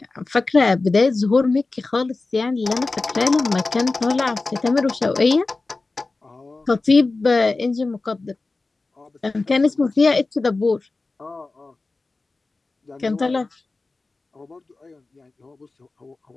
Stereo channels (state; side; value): quieter; right; 3.5 dB